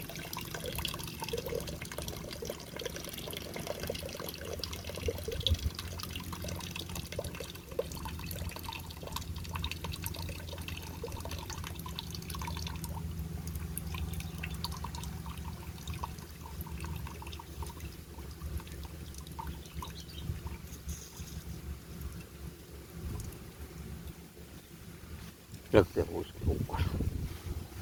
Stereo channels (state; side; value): identical; both; correlation 1.00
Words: रखते हो उसके ऊपर।